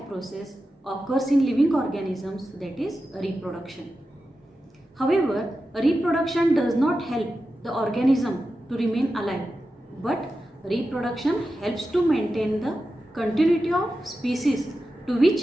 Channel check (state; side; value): normal; both; correlation 0.91